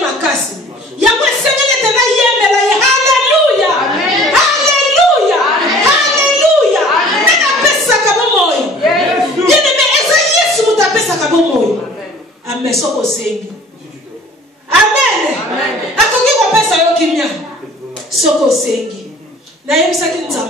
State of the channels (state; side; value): normal; both; correlation 0.49